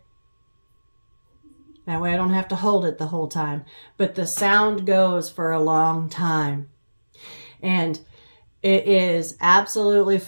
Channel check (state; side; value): inverted; both; correlation -1.00